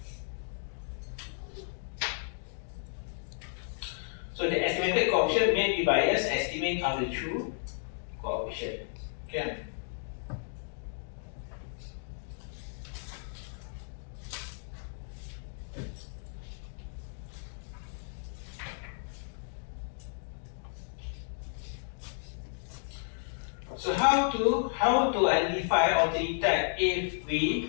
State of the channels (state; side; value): silent; right; digital silence